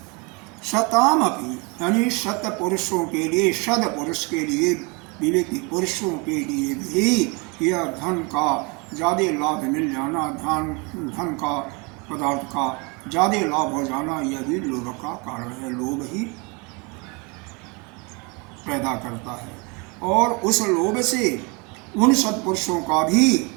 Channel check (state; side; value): quieter; left; 30.0 dB